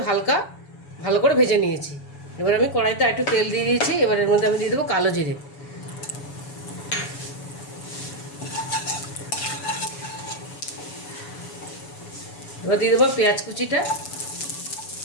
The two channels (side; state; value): right; late; 7.0 ms